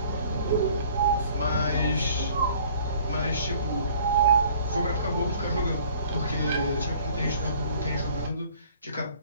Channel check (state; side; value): inverted; both; correlation -0.53